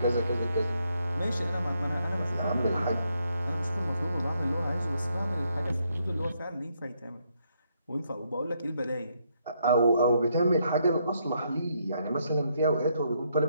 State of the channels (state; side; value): inverted; both; correlation -0.75